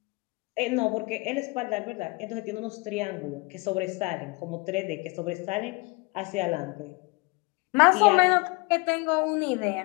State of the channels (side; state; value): right; quieter; 27.0 dB